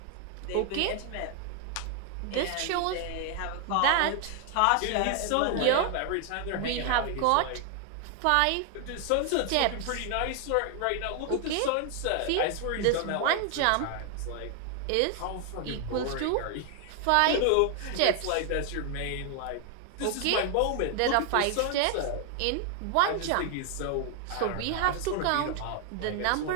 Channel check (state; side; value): different; both; correlation 0.00